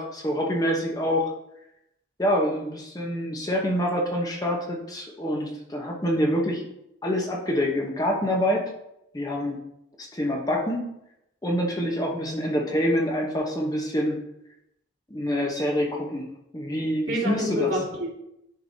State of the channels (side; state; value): both; normal; correlation 0.53